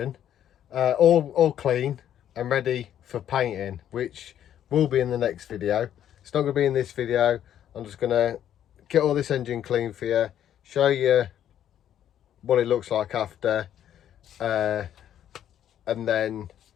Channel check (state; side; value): quieter; right; 10.5 dB